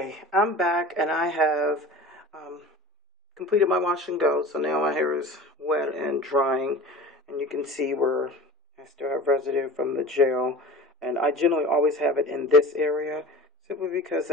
I'm back and I have um, completed my wash and go. So now my hair is wet and drying, and you can see where I still have residue from the gel. And I generally always have it in this area simply because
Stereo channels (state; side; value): normal; both; correlation 0.37